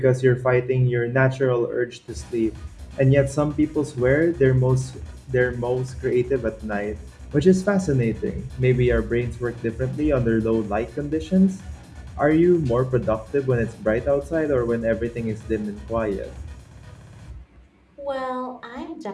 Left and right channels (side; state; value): both; identical; correlation 1.00